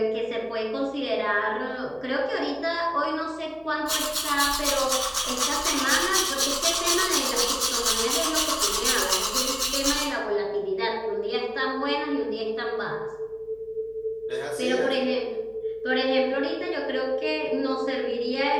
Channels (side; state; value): left; noise; hum, 28 dB below the sound